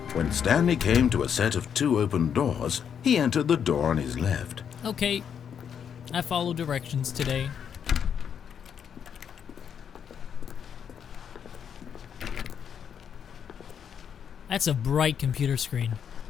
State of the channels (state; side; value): quieter; right; 7.9 dB